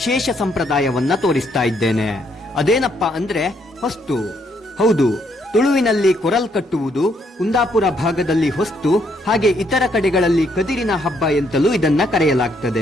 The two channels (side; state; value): both; normal; correlation 0.72